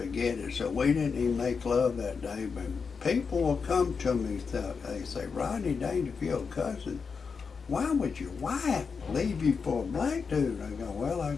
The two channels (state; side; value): quieter; right; 5.4 dB